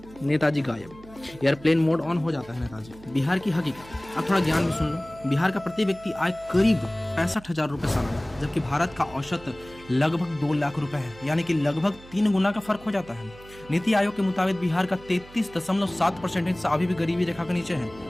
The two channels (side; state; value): right; noise; hum, 20 dB below the sound